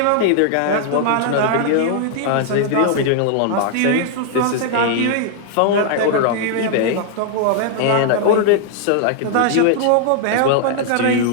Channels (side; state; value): both; different; correlation 0.00